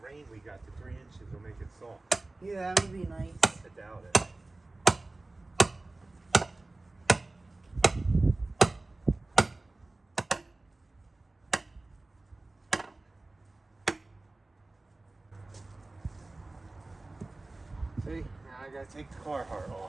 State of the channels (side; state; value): left; quieter; 3.0 dB